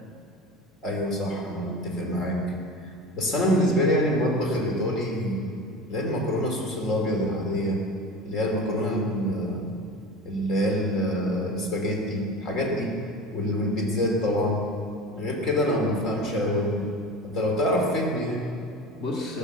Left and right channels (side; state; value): both; normal; correlation 0.32